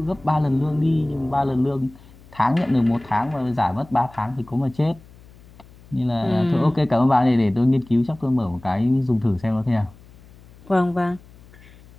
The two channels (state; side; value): noise; left; hum, 24 dB below the sound